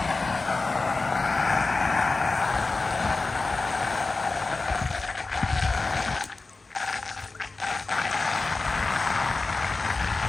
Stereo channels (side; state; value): right; quieter; 3.6 dB